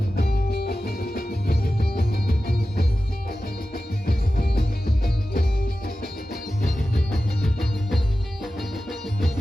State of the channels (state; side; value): normal; both; correlation 0.94